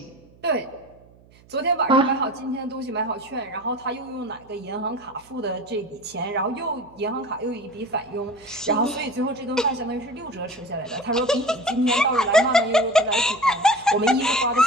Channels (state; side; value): noise; right; hum, 27 dB below the sound